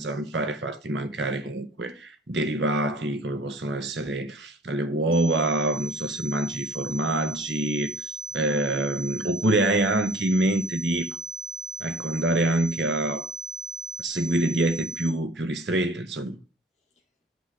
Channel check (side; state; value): both; normal; correlation 0.49